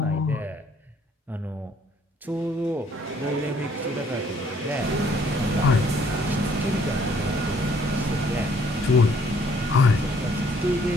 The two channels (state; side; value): normal; both; correlation 0.63